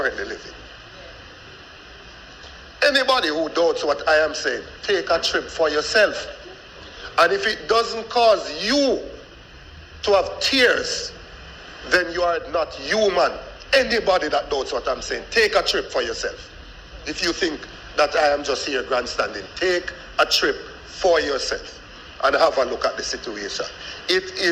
living. Anybody who doubts what I am saying, take a trip for yourself. And if it doesn't cause you to have tears, then you are not human. Anybody that doubts what I'm saying, take a trip for yourself. If you think that I am just here grandstanding, take a trip for yourself and have a look at the situation. It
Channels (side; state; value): both; identical; correlation 1.00